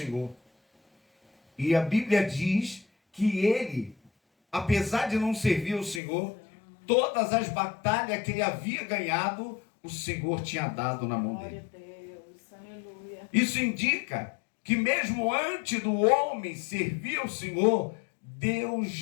E a Bíblia diz que ele, apesar de não servir o Senhor, todas as batalhas que ele havia ganhado, o Senhor tinha dado na mão dele. Isso indica que mesmo antes do homem servir ao Senhor, Deus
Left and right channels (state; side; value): drops out; right; at 6.0 s